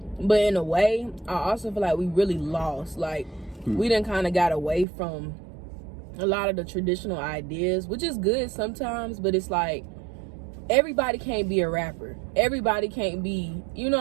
But in a way, I also feel like we really lost. Like, we done kind of got away from a lot of the traditional ideas, which is good sometimes, but it's like, everybody can't be a rapper. Everybody can't be, you know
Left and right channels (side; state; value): left; drops out; at 4.9 s